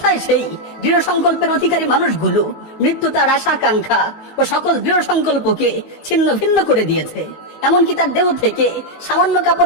সেই দৃঢ় সংকল্পের অধিকারী মানুষগুলো? মৃত্যু তার আশা আকাঙ্ক্ষা ও সকল দৃঢ় সংকল্পকে ছিন্ন ভিন্ন করে দিয়েছে। এমনকি তার দেহ থেকে সামান্য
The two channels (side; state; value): right; late; 18 ms